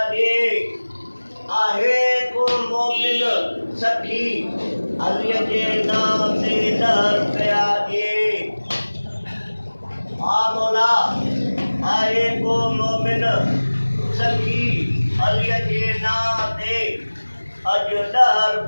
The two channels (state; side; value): inverted; both; correlation -1.00